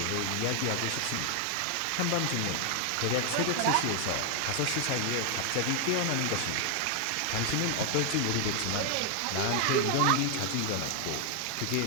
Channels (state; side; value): different; both; correlation 0.00